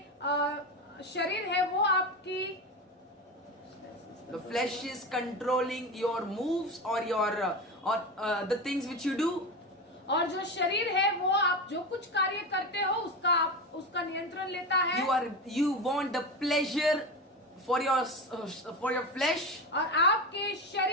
The flesh is controlling your moves or the things which you do. और जो शरीर है वो आप जो कुछ कार्य करते हो उसका नियंत्रण लेता है। You want the pleasure for your flesh. और आपके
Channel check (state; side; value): normal; both; correlation 0.22